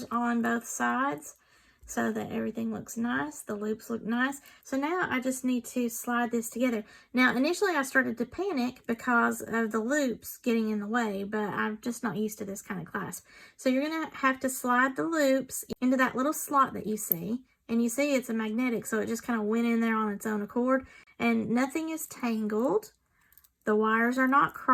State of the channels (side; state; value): both; identical; correlation 1.00